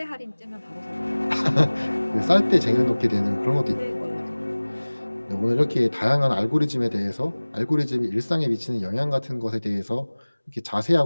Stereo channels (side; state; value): both; inverted; correlation -1.00